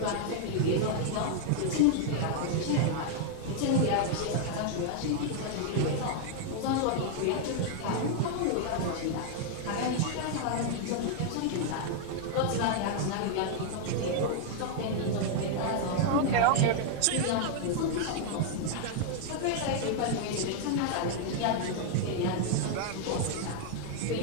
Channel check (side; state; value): both; different; correlation 0.00